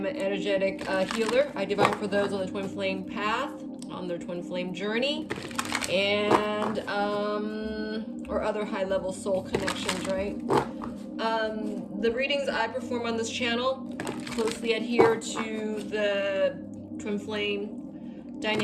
an energetic healer. I divine for those on the Twin Flame path, on their Twin Flame journey, and or other high-level soul connections, right? The readings I perform on this channel closely adhere to the Twin Flame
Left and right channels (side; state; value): both; identical; correlation 1.00